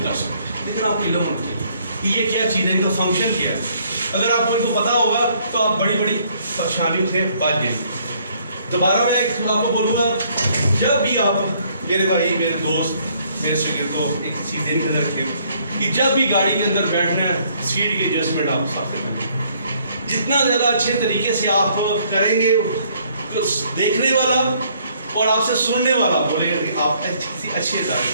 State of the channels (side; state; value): both; inverted; correlation -0.65